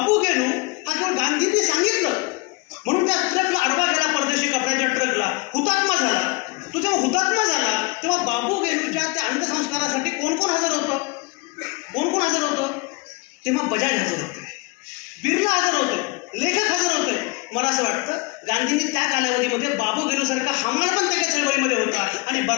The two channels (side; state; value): right; quieter; 26.4 dB